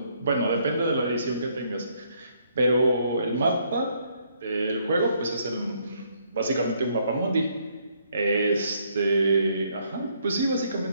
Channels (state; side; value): inverted; both; correlation -0.70